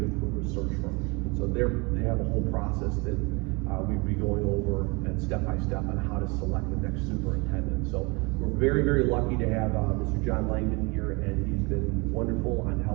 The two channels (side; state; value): left; quieter; 27.9 dB